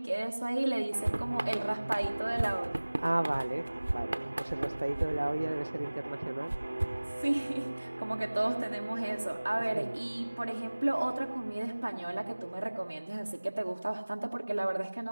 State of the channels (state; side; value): inverted; both; correlation -1.00